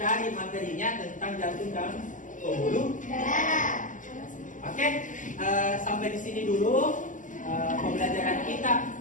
materinya tentang jantung dan pembuluh darah. Oke, sampai di sini dulu pembelajaran kita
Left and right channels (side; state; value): right; late; 0.37 ms